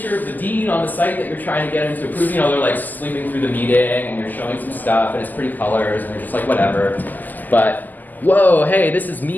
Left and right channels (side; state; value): right; late; 0.084 ms